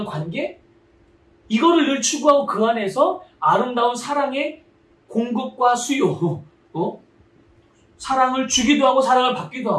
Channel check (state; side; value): identical; both; correlation 1.00